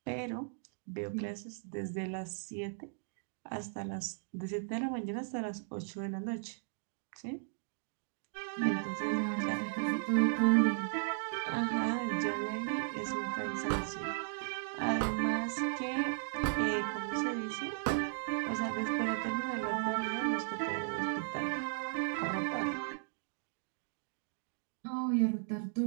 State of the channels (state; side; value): silent; left; digital silence